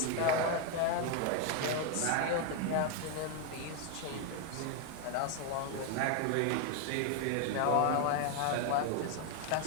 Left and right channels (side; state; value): both; different; correlation 0.01